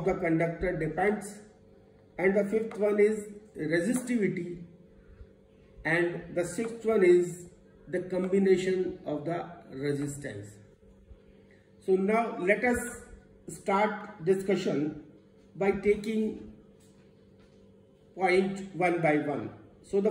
the conductor depends, and the fifth one is resistivity, and the sixth one is the combination of the resistance. So now let us start discussion by taking point one by one. So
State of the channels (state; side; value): identical; both; correlation 1.00